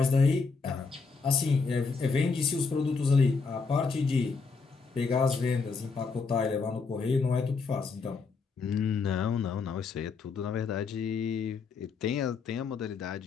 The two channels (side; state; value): right; quieter; 4.8 dB